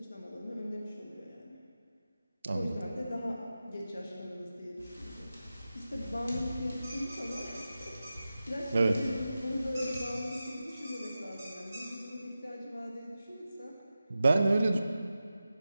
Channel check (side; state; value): both; inverted; correlation -0.93